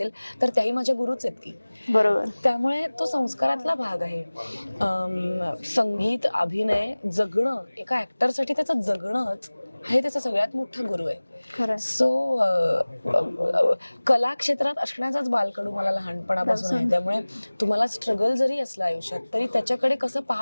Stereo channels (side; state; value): both; inverted; correlation -1.00